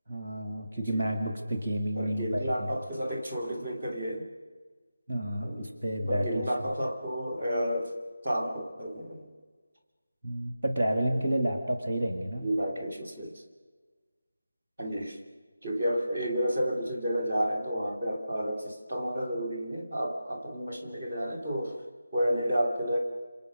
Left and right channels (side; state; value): both; inverted; correlation -0.90